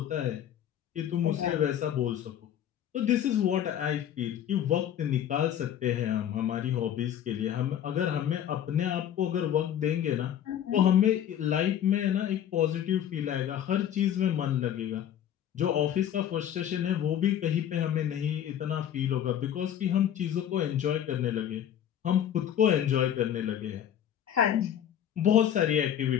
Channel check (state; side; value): quieter; right; 10.2 dB